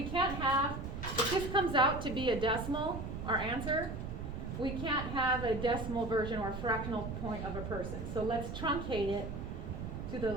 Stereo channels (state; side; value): noise; right; rumble, 6 dB below the sound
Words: can't have, if this comes out to be a decimal, our answer, we can't have a decimal version or a fractional point of a person. So let's truncate it